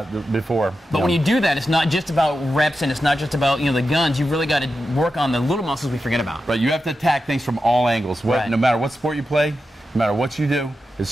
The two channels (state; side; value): normal; both; correlation 0.90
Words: Than I before. But when you do that, it's not just about reps and it's not just about, you know, the guns. You've really got to work on the little muscles we forget about. Right. You have to attack things from all angles. No matter what sport you play, no matter what you do, it's